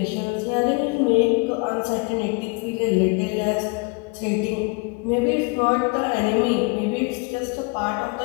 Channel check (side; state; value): right; quieter; 30.6 dB